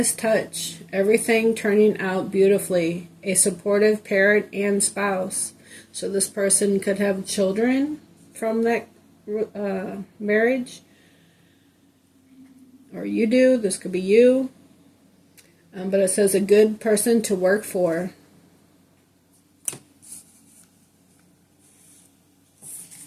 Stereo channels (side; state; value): both; identical; correlation 1.00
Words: touch, everything turning out beautifully, a supportive parent and spouse. So this person could have children from that marriage, or you do. This could be you. But it says a good person to work for.